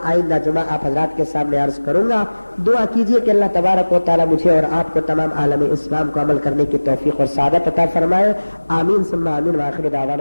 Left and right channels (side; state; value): both; inverted; correlation -1.00